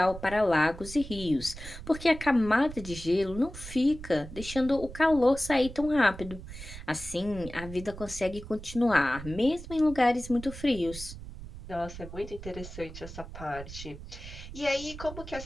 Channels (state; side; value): noise; right; rumble, 12 dB below the sound